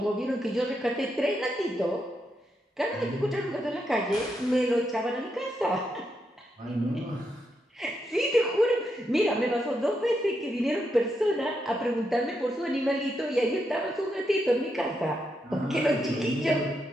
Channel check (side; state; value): both; normal; correlation 0.82